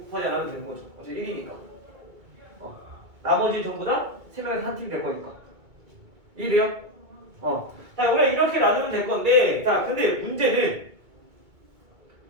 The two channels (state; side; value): late; left; 2.2 ms